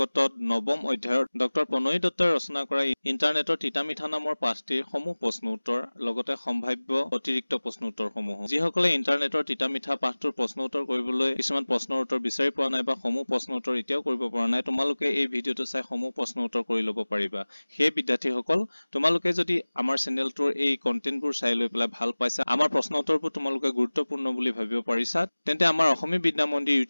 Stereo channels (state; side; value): inverted; both; correlation -1.00